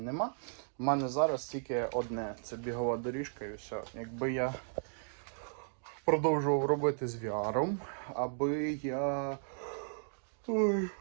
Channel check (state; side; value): silent; left; digital silence